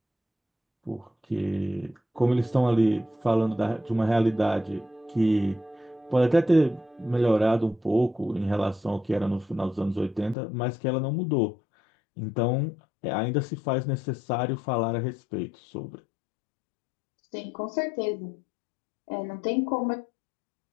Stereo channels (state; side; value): drops out; right; at 10.4 s